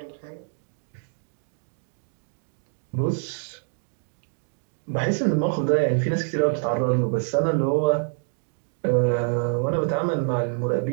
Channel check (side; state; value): left; silent; 61 dB below the other